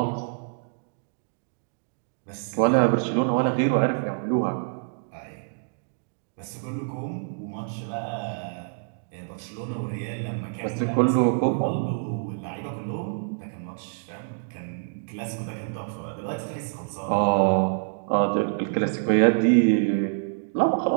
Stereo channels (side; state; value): left; silent; digital silence